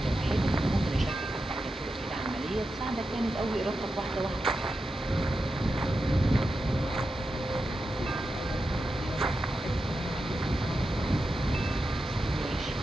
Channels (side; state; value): both; normal; correlation 0.89